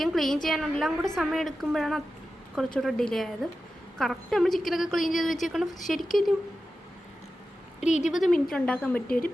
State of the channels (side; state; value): both; normal; correlation 0.92